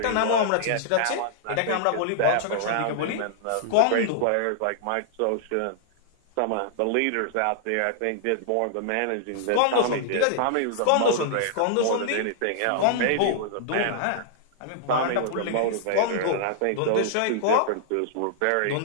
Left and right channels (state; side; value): different; both; correlation -0.01